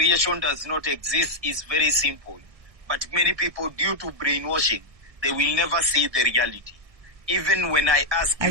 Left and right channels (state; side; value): late; left; 1.6 ms